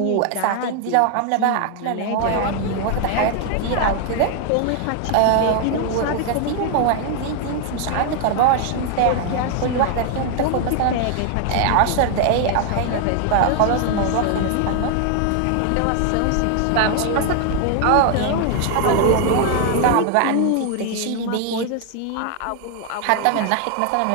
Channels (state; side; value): different; both; correlation 0.00